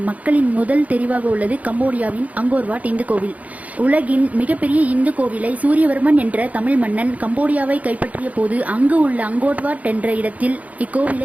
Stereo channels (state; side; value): late; left; 0.071 ms